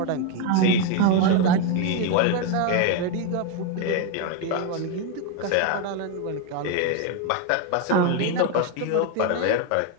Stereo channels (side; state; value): both; different; correlation 0.01